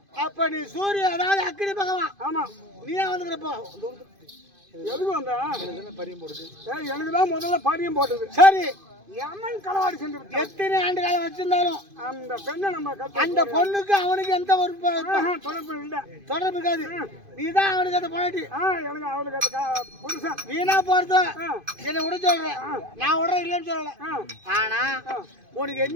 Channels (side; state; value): left; late; 2.5 ms